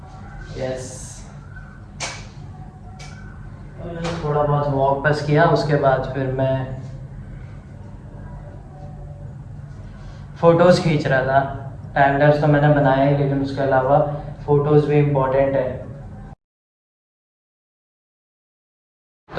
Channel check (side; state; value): both; identical; correlation 1.00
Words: यस, थोड़ा बहुत वॉक बस किया, उसके बाद फिर मैं फ़ोटोज़ खींच रहा था। टाइम लैप्स तो मैंने बनाया ही, लेकिन उसके अलावा फ़ोटोज़ भी इम्पोर्टेंट है।